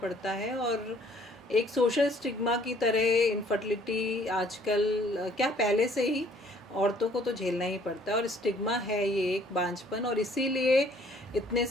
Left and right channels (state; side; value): normal; both; correlation 0.60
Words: है, और एक सोशल स्टिग्मा की तरह इनफर्टिलिटी आजकल क्या पहले से ही औरतों को तो झेलना ही पड़ता है, और स्टिग्मा है ये एक बांझपन, और इसीलिए इतने